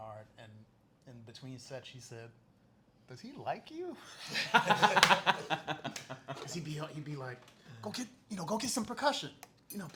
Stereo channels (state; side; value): identical; both; correlation 1.00